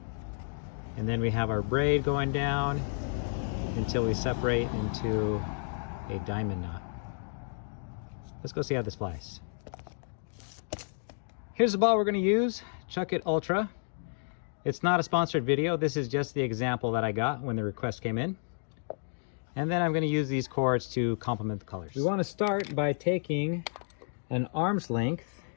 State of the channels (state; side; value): silent; right; digital silence